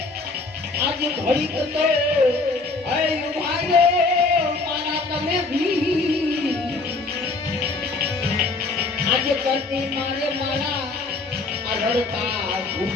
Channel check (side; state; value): right; quieter; 3.7 dB